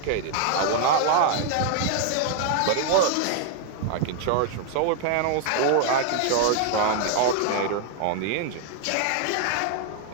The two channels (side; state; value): both; different; correlation 0.00